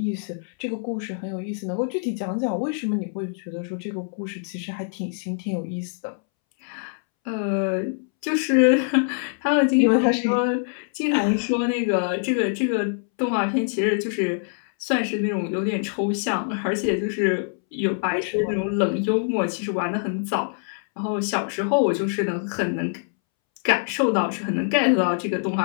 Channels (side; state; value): right; silent; 62 dB below the other